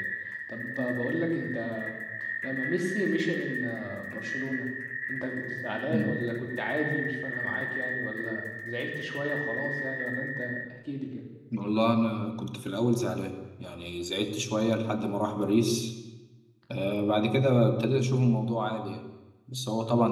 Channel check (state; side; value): identical; both; correlation 1.00